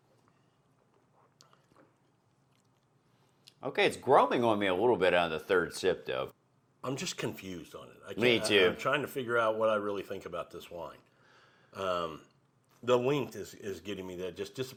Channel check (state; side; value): identical; both; correlation 1.00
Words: Okay, it's growing on me a little bit on the third sip though. I'm just confused on it. Me too. I'm trying to figure out what I really think about this wine. The length is getting me that just